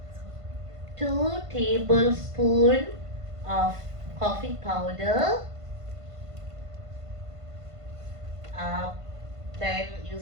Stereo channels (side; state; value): left; late; 1.5 ms